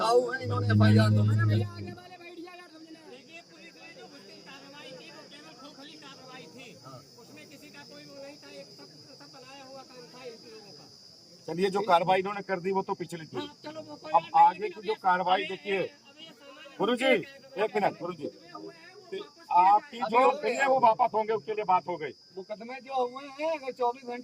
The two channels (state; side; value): identical; both; correlation 1.00